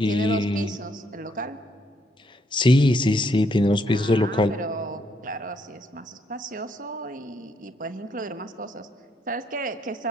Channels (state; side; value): normal; both; correlation 0.73